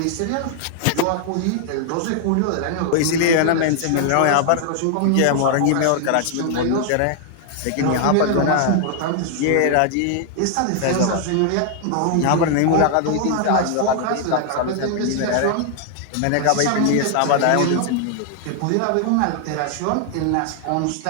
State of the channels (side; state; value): both; different; correlation 0.00